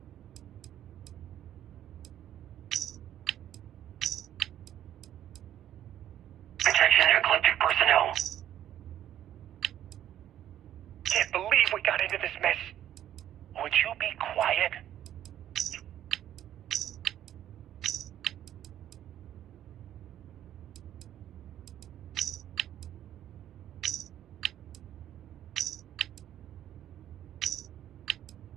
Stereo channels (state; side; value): quieter; left; 11.4 dB